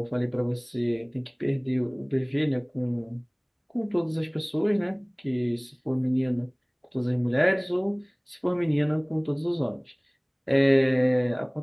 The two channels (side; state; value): both; identical; correlation 1.00